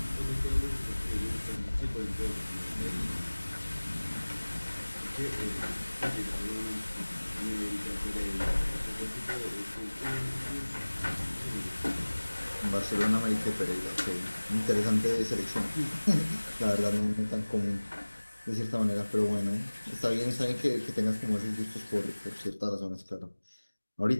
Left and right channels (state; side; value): inverted; both; correlation -1.00